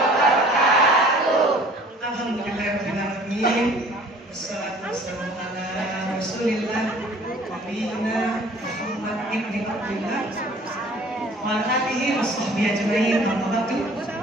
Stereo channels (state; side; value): normal; both; correlation 0.51